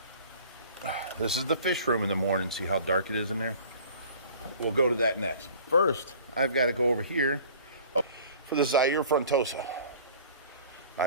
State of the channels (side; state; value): both; inverted; correlation -0.47